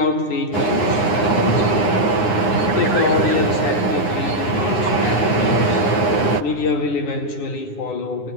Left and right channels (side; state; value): right; late; 9.4 ms